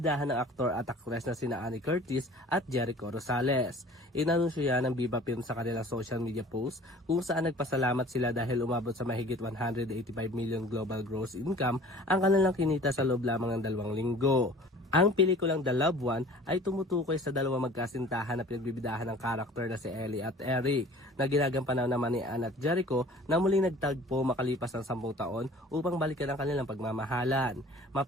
ng aktor at aktres na sina Ann Curtis at Jericho Rosales. Inanunsyo yan ng Viva Films sa kanilang social media post kung saan nagpasalamat sila dahil umabot sa mahigit 185 million global gross income ang kanilang kinita sa loob lamang ng 2 linggo. Ang pelikulang The Loved One ay tumutukoy sa dalawang magkasintahan na pinagbibidahan ng karakter na si Ellie at Eric na ginagampanan naman ni Ann at Jericho na muling nagtagpo makalipas ng 10 taon upang balikan ang kanilang pagmamahalan.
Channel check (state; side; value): normal; both; correlation 0.47